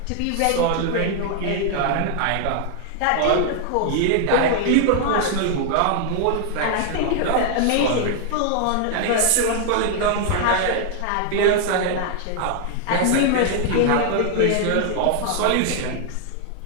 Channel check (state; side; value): different; both; correlation 0.00